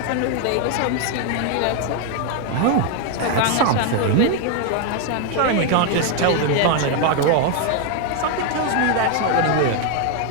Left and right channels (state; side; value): different; both; correlation 0.01